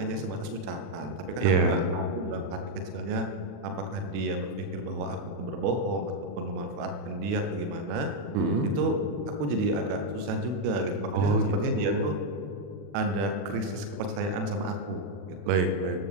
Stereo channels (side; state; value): left; late; 40 ms